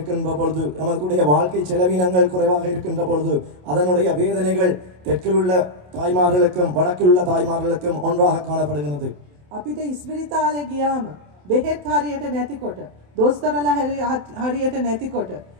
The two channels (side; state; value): left; late; 27 ms